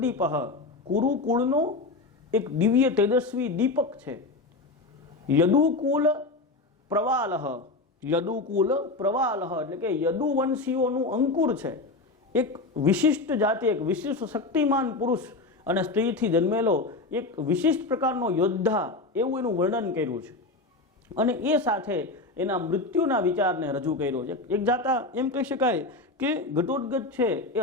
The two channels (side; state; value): right; quieter; 3.3 dB